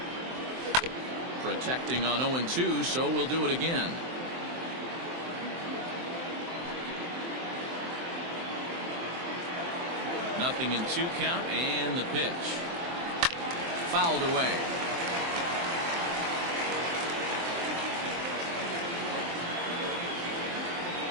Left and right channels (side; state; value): left; late; 23 ms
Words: Protecting on 0-2, so we'll do it again. Nothing in 2 count, and the pitch. Fouled away.